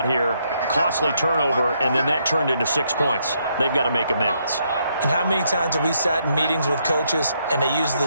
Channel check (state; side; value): inverted; both; correlation -0.75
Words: here, costly turnover, and then that turned into 6 points. They've got to make amends. And how many times have we sat in meetings with coaches and they use